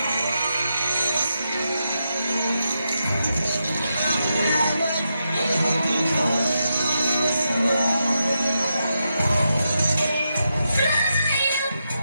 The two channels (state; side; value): inverted; both; correlation -0.86